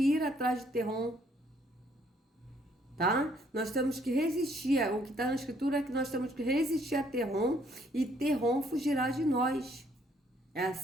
ir atrás de Terron. Tá? Nós temos que resistir. O que está na Escritura é que nós temos que resistir a Terron e Terron fugirá de nós. É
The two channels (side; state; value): both; normal; correlation 0.66